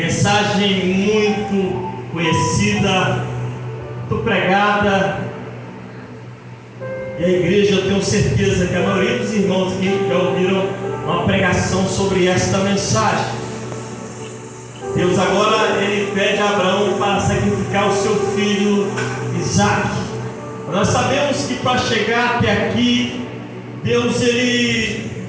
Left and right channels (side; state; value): both; identical; correlation 1.00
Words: muito conhecida, muito pregada, e a igreja, eu tenho certeza que a maioria dos irmãos aqui já ouviram uma pregação sobre esta mensagem. Deus agora ele pede a Abraão para sacrificar o seu filho Isaque. Nós sabemos que para chegar até aqui, Deus ele